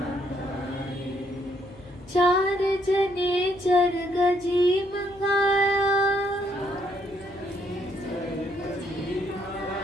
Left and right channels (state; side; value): noise; left; hum, 23 dB below the sound